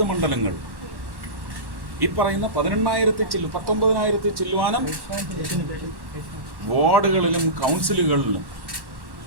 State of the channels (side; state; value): left; late; 1.1 ms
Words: മണ്ഡലങ്ങൾ ഈ പറയുന്ന 19,000 ചില്ലുവാനം വാർഡുകളിലും കൗൺസിലുകളിലും